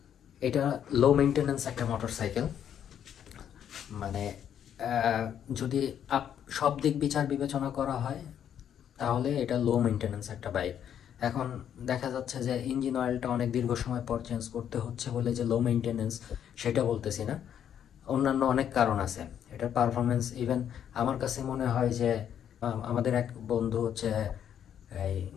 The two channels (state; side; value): quieter; right; 9.3 dB